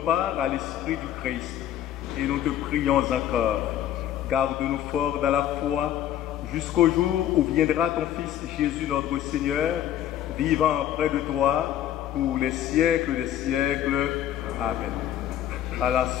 à l'Esprit du Christ. Et nous te prions encore. Garde-nous forts dans la foi jusqu'au jour où viendra ton Fils Jésus notre Seigneur, vivant près de toi pour les siècles des siècles. Amen. À la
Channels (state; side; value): quieter; right; 11.3 dB